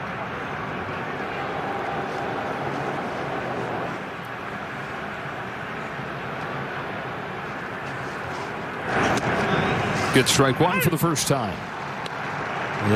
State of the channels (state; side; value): identical; both; correlation 1.00